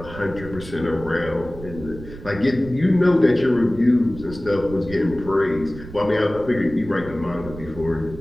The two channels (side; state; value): right; noise; rumble, 14 dB below the sound